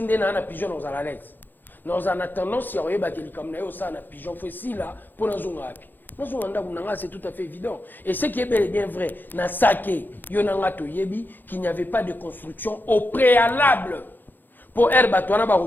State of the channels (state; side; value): late; right; 0.090 ms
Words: na pigeon na ozalales. Nous en attendant si on a un pigeon facile là pour nous api. C'est tout à fait évident. Et ce qui est bel et bien vrai, dans Saké, qu'il n'y avait pas de construction au préalable pour Herbatouana